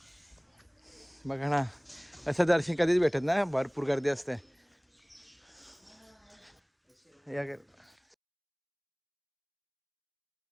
बघा ना, असं दर्शन कधीच भेटत ना, भरपूर गर्दी असते. या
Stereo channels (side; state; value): both; identical; correlation 1.00